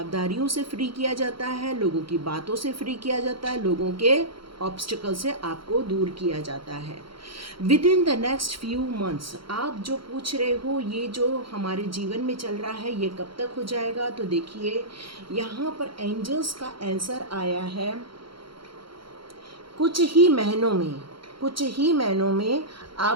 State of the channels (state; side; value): late; left; 0.74 ms